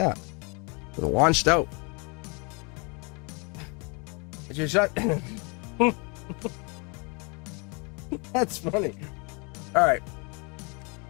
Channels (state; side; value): quieter; right; 32.0 dB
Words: It launched out. It's your shot. That's funny. All right.